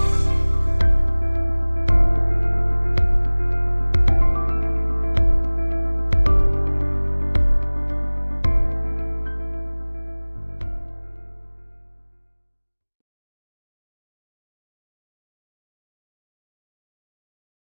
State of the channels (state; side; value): inverted; both; correlation -1.00